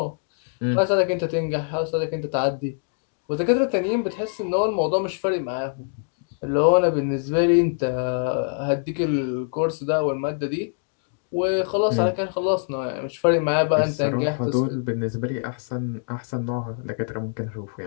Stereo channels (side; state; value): right; silent; digital silence